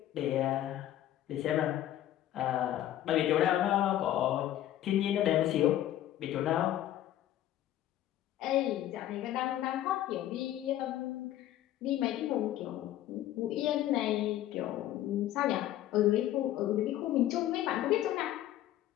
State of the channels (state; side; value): quieter; right; 12.9 dB